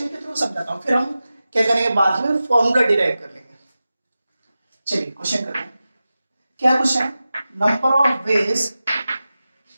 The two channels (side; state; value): both; inverted; correlation -0.94